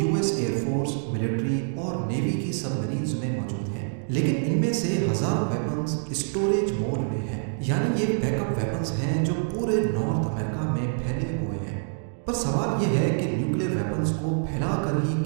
ایئر فورس، ملٹری اور نیوی کی سب مرینز میں موجود ہیں، لیکن ان میں سے ہزاروں ویپنز اسٹوریج موڈ میں ہیں، یعنی یہ بیک اپ ویپنز ہیں جو پورے نارتھ امریکہ میں پھیلے ہوئے ہیں۔ پر سوال یہ ہے کہ نیوکلیر ویپنز کو پھیلا کر ہی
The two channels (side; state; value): left; silent; digital silence